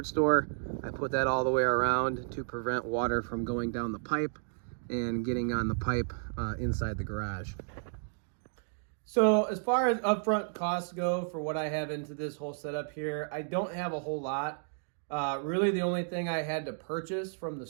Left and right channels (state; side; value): silent; left; digital silence